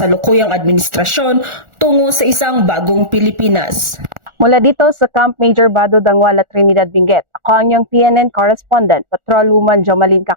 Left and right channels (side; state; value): left; late; 1.4 ms